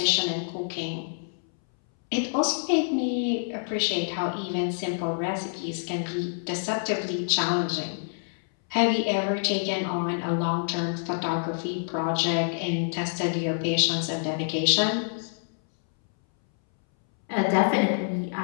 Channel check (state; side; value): silent; right; 60 dB below the other